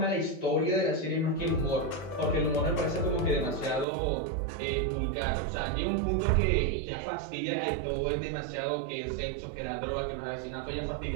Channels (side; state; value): left; drops out; at 3.9 s